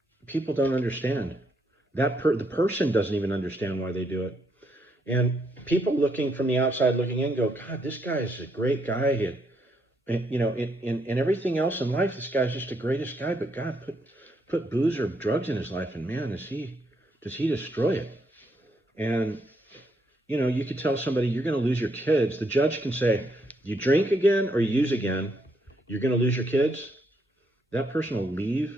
People don't understand that. The person doesn't even understand why they do it. And people looking from the outside looking in go, God, this guy is a great guy. And in everything else in life, this guy's just the greatest guy. But God put booze or drugs in his life, and man, does he destroy it. And you could tell somebody you're going to lose your kids. The judge can say, you drink again or you use again, you're going to lose your kids. That person will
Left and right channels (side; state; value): both; normal; correlation 0.75